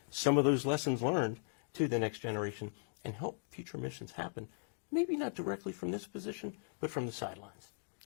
some of those lessons learned to the next generation and help future missions happen. Maybe not directly from this position, but from the sidelines.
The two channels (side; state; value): right; silent; digital silence